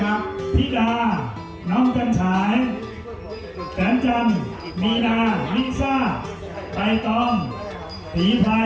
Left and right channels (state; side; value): identical; both; correlation 1.00